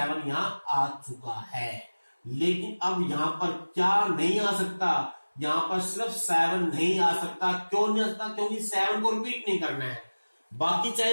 यहाँ आ चुका है। लेकिन अब यहाँ पर क्या नहीं आ सकता? यहाँ पर सिर्फ 7 नहीं आ सकता। क्यों नहीं आ सकता? क्योंकि 7 को रिपीट नहीं करना है, बाकी चाहे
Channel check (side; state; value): both; inverted; correlation -1.00